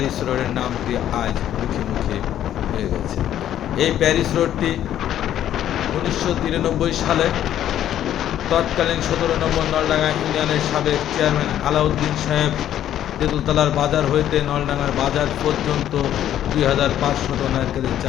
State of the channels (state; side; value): quieter; right; 11.3 dB